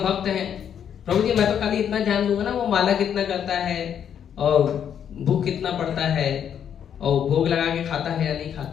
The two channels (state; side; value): quieter; right; 8.7 dB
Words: हैं, प्रभु जी मैं तो खाली इतना ध्यान दूंगा ना, वो माला कितना करता है और भूख कितना पड़ता है और भोग लगा के खाता है या नहीं